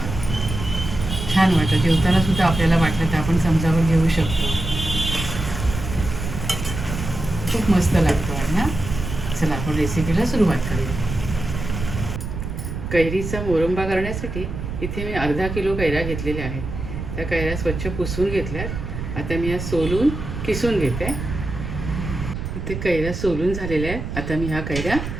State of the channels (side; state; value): right; noise; rumble, 6 dB below the sound